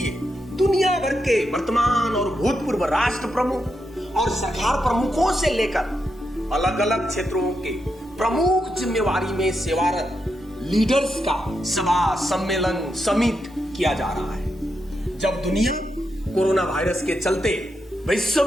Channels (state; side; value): normal; both; correlation 0.84